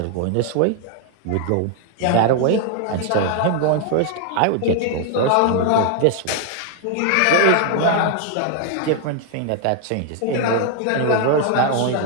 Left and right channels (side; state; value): both; different; correlation 0.00